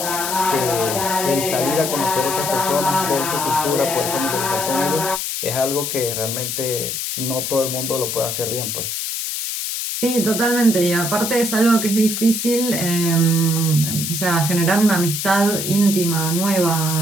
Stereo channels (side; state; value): left; noise; hiss, 3 dB below the sound